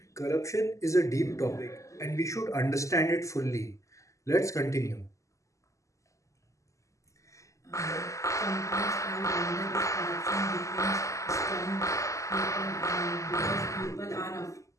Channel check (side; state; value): right; late; 0.15 ms